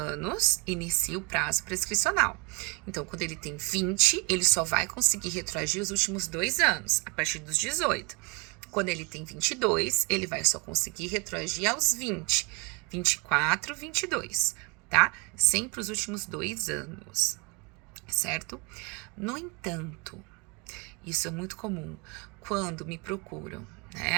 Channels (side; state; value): left; quieter; 30.5 dB